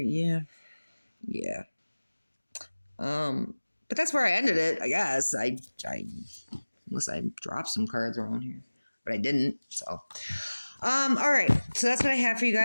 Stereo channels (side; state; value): both; inverted; correlation -1.00